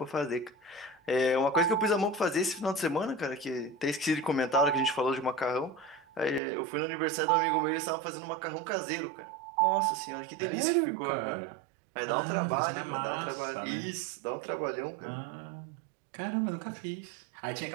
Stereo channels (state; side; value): drops out; left; at 6.4 s